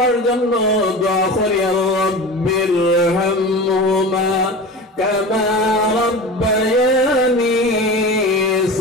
জন্য দোয়া করি আল্লাহ, বিরহামহুমা কামা রাব্বায়ানি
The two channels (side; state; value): both; normal; correlation 0.31